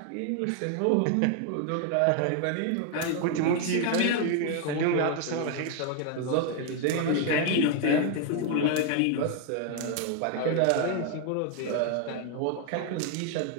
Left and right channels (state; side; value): different; both; correlation 0.01